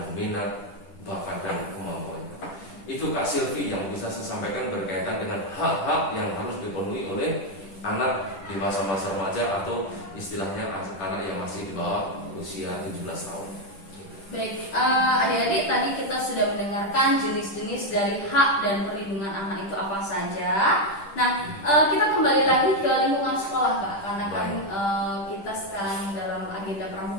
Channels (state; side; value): late; right; 10 ms